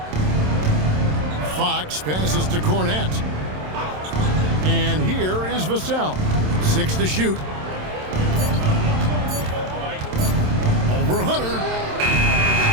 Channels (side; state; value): left; late; 27 ms